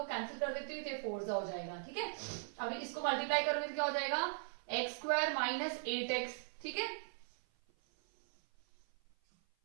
कैंसिल कर देती हूँ, तो 4 हो जाएगा। ठीक है, अभी इसको मल्टीप्लाई करोगे तो क्या हो जाएगा x स्क्वायर माइनस 8x। ठीक है,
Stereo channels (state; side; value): silent; left; 51 dB below the other